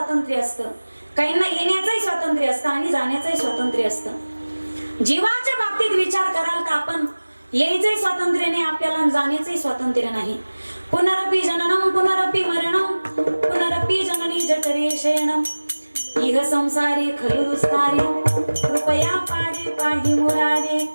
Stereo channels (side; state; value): both; inverted; correlation -1.00